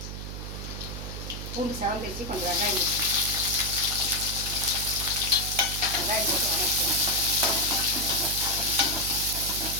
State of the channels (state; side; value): noise; right; hum, 8 dB below the sound